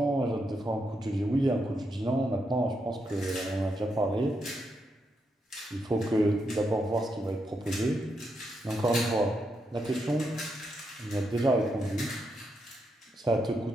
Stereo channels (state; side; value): normal; both; correlation 0.82